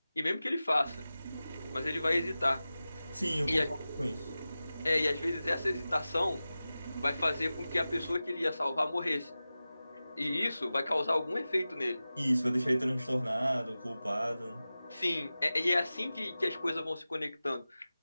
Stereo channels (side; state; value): both; inverted; correlation -0.95